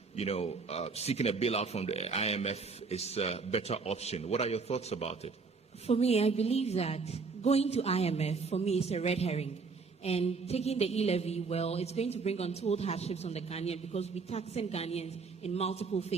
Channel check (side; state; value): left; quieter; 4.6 dB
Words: seeking a bailout from the IMF is a better option. What are your thoughts about it? For me, I believe that going to IMF, for me, is a red herring. And taking the e-levy, well, it's going to bring untold hardships on the Ghanaian because we're taxing Ghanaians in multiple